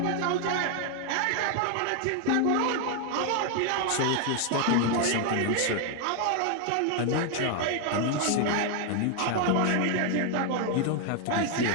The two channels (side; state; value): both; different; correlation 0.00